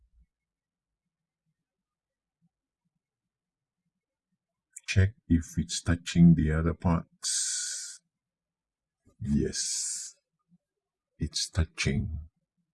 check if it's touching the other parts. Yes, it's touching.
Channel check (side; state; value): both; identical; correlation 1.00